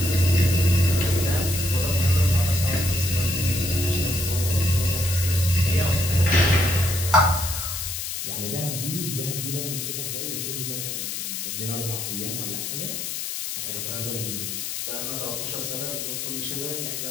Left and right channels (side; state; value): left; noise; hiss, 4 dB below the sound